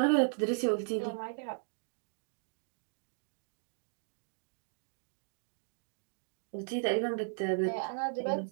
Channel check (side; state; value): left; silent; digital silence